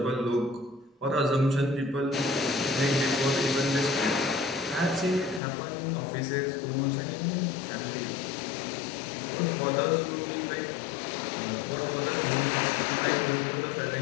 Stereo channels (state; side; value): drops out; right; at 5.4 s